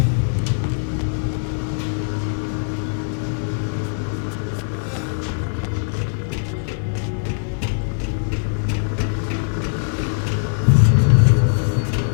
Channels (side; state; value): right; silent; 63 dB below the other